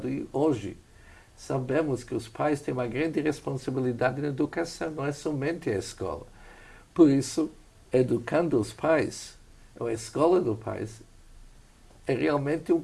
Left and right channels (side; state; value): both; identical; correlation 1.00